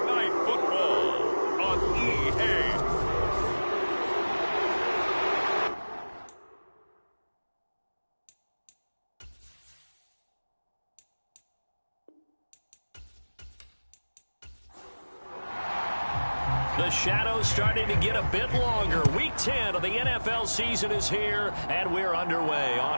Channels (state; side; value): inverted; both; correlation -1.00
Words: Night Football on EA. The shadow's starting to get a bit longer. Week 10 of the NFL season is here, and we're underway